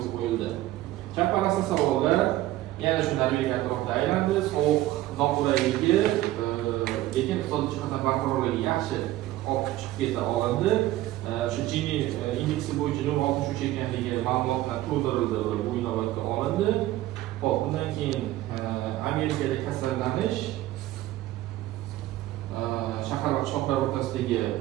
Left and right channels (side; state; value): left; quieter; 15.6 dB